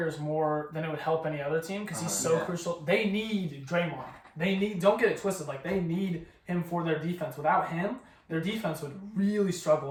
more than it would help any other team because he's so crucial. They need Draymond. Don't get it twisted. They need him for their defense. Without him, their defense would really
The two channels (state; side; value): identical; both; correlation 1.00